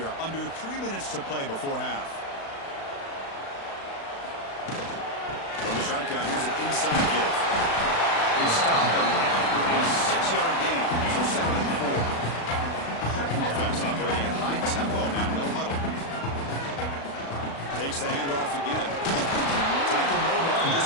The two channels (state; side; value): late; right; 36 ms